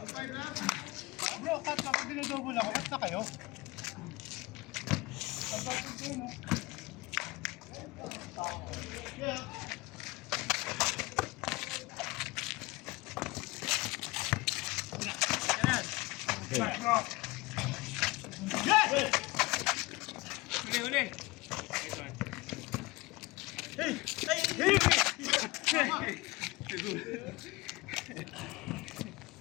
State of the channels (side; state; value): right; quieter; 22.5 dB